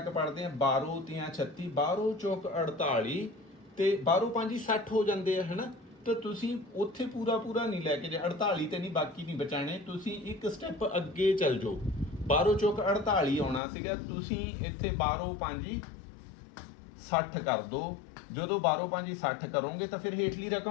ਪੜ੍ਹਦੇ ਹਾਂ, 12 ਤੀਆਂ 36, 12 ਚੌਕ 48 ਤੇ 12 5 60 ਹੋ ਜਾਂਦੇ ਆ, ਹੈ ਨਾ। ਤਾਂ ਤੁਸੀਂ ਉੱਥੇ ਪੂਰਾ ਪੂਰਾ ਨਹੀਂ ਲੈ ਕੇ ਜਾ, 48 ਤੇ ਨਹੀਂ, ਬਾਕੀ ਨਹੀਂ ਬਚਾਣੇ। ਤੁਸੀਂ ਇੱਕ ਸਟੈਪ ਅੱਗੇ ਚੱਲ ਜਾਓ। 12 ਚੌਕ 48 ਆਉਣਾ ਸੀਗਾ, ਤੁਸੀਂ ਇੱਥੇ 12 5 60 ਕਰ ਦਿਓ। ਜਦੋਂ 12 5 60 ਕਰੋਗੇ ਤਾਂ ਫਿਰ ਹੇਠਲੀ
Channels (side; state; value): right; drops out; at 13.6 s